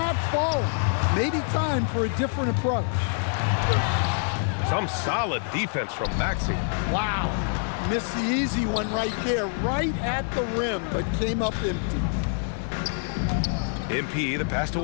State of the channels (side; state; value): right; silent; 59 dB below the other